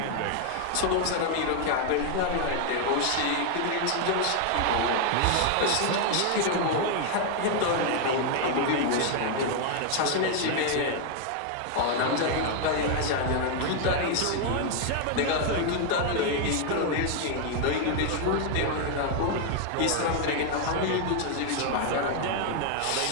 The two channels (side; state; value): both; different; correlation 0.00